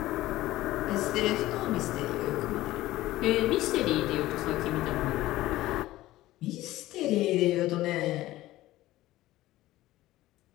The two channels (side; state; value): right; quieter; 16.4 dB